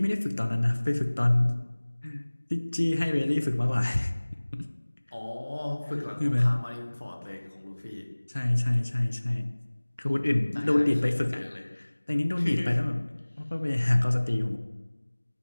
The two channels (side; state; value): both; inverted; correlation -1.00